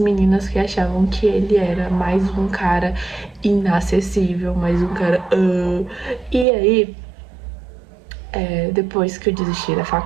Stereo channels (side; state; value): left; drops out; at 6.5 s